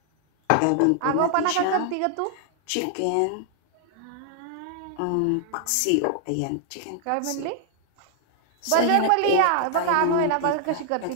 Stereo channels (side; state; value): both; different; correlation 0.00